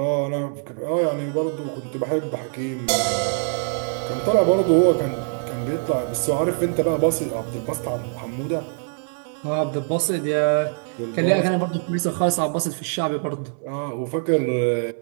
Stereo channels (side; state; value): left; silent; 63 dB below the other